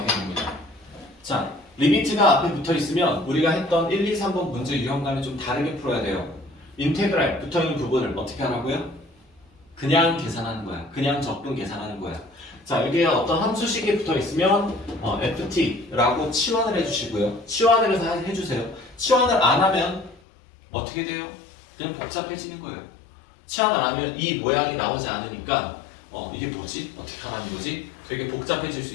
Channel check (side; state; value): right; drops out; at 20.2 s